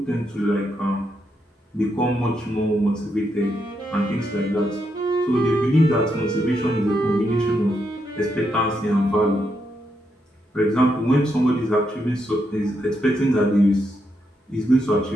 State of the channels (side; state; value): both; normal; correlation 0.81